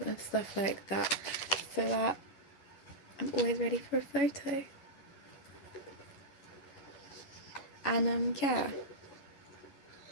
and stuff like that, so that I'm always ready for a photo. And yeah,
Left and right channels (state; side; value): late; right; 11 ms